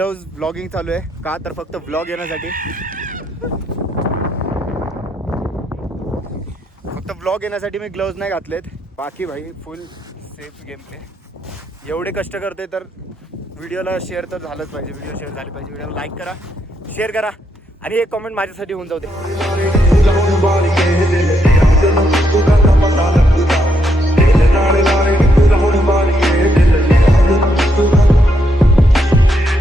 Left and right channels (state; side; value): normal; both; correlation 0.77